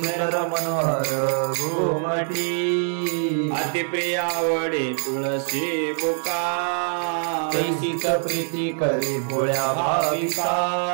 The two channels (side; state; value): left; silent; 63 dB below the other